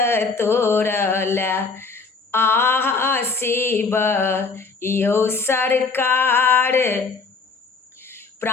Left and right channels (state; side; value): quieter; right; 4.5 dB